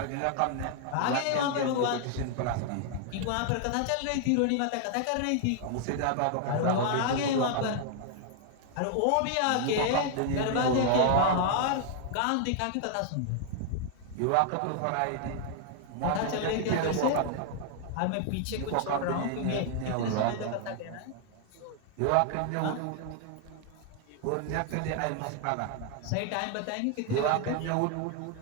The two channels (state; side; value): different; both; correlation 0.00